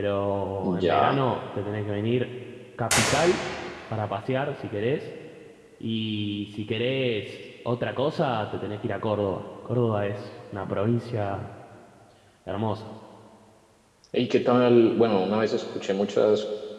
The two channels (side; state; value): both; identical; correlation 1.00